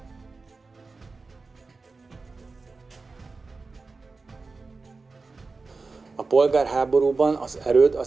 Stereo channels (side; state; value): left; quieter; 4.0 dB